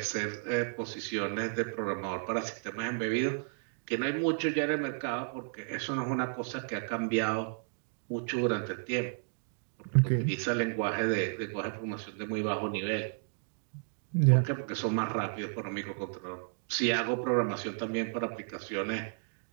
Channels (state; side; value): silent; left; digital silence